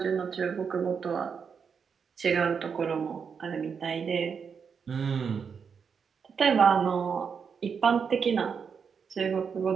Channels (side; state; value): left; quieter; 6.3 dB